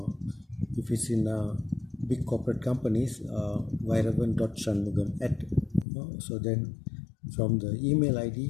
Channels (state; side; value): drops out; right; at 5.9 s